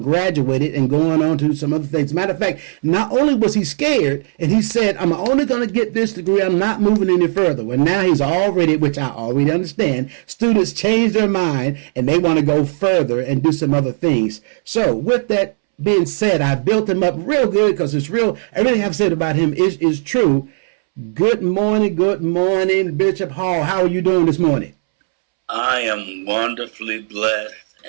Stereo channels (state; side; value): silent; left; 68 dB below the other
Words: and going on to some other things. As a matter of fact, not only was he scared, and he said, I'm only going to get this degree, I'm not moving any further. Well, now he's already, which I already understand, students change their mind and they want to go further and do some other things. So with that being said, I built him up real good because it's real. Everything I've said about him is true. Good morning, Bishop Hall. How are you doing this morning? I am wonderfully blessed,